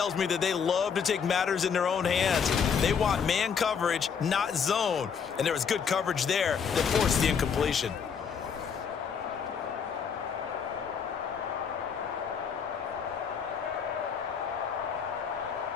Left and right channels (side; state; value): right; quieter; 6.7 dB